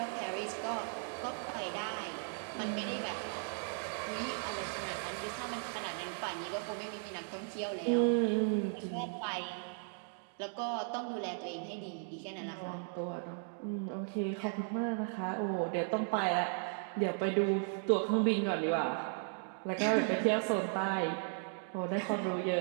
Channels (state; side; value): silent; left; 54 dB below the other